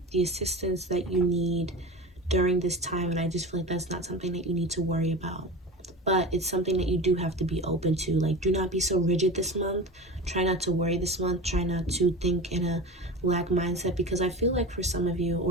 the assistance that you need during this time. And I just feel like that's not something that you need to worry about, but it's something that you do have to be open to. Like, do not be so rigid this month. Try not to worry this month. Try not to think in a lack mindset, because I feel like for some of you,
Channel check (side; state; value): both; normal; correlation 0.31